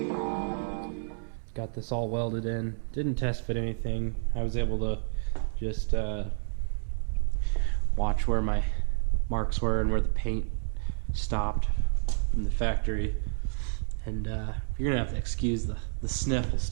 time. Got this all welded in. Didn't test fit anything. I was able to just watch where my marks were and where the paint stopped from the factory. And you're gonna have to excuse the sniffles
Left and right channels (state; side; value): silent; left; 58 dB below the other